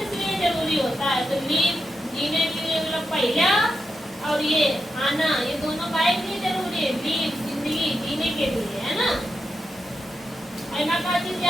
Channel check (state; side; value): normal; both; correlation 0.86